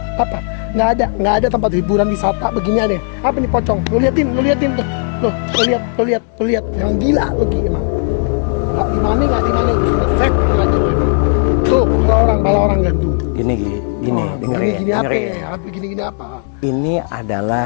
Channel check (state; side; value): silent; right; 62 dB below the other